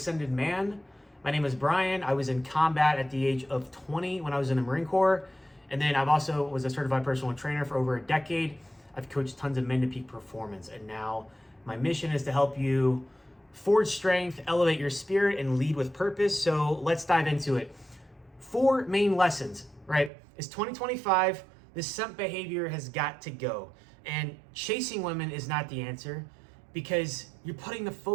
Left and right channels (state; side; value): drops out; left; at 20.1 s